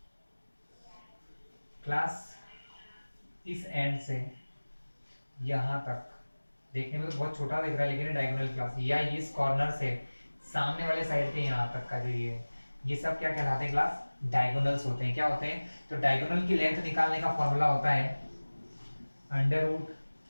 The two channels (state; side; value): inverted; both; correlation -1.00